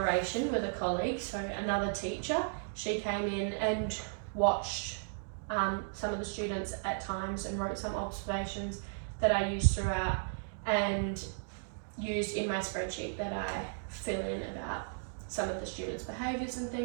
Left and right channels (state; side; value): silent; left; digital silence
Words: with a colleague, so another teacher. She came in and watched some of the students at times and wrote some observations that I used throughout and used in my spreadsheet that I fill in about some of the students' behaviours and